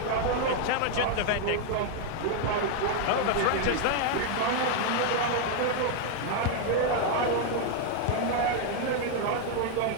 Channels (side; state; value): both; different; correlation 0.00